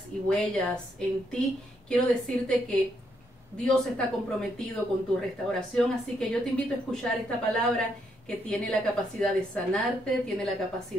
y huellas en ti, quiero decirte que Dios está comprometido con tu restauración, así que yo te invito a escuchar esta palabra que tiene la capacidad de sanarte, tiene la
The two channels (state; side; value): normal; both; correlation 0.76